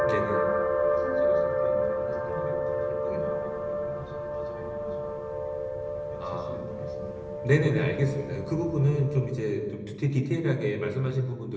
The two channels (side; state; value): both; identical; correlation 1.00